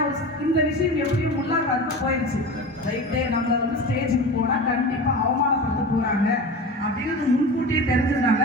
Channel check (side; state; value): both; normal; correlation 0.31